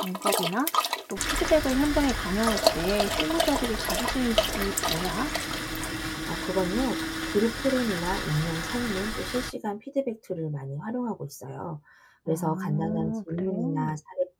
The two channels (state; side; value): identical; both; correlation 1.00